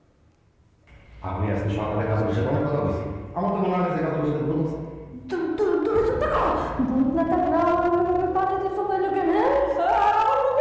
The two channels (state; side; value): identical; both; correlation 1.00